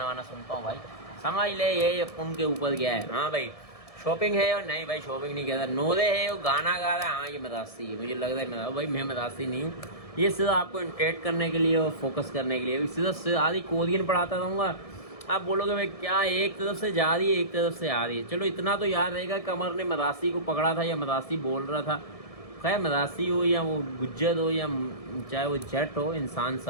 वाना सुनता हूँ भाई। समझ ले ये उनके ऊपर गया है। हाँ भाई शॉपिंग है और नहीं भाई शॉपिंग नहीं कहता, नोरे है वो गाना गा रहा है, हाँ ये मदासी है, मुझे लग रहा है भाई मैं मदासी नहीं हूँ, ये सिर्फ आपको इंटरेक्ट करने के लिए और फोकस करने के लिए, सिर्फ आधी कोरियन पढ़ाता रहूँगा। आप बोलोगे भाई क्या एक तरफ से जा रही है एक तरफ से आ रही है, चलो इतना तो याद रहेगा कमर ने मदासी को पकड़ा था या मदासी बोल रहा था। खैर मदासी हो या वो गुज्जर हो या चाहे वो जट हो, इंसान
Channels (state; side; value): late; right; 1.7 ms